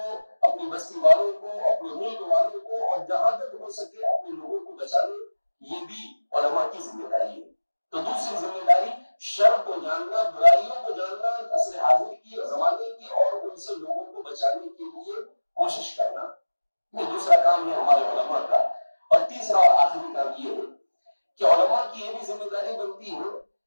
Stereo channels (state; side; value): inverted; both; correlation -1.00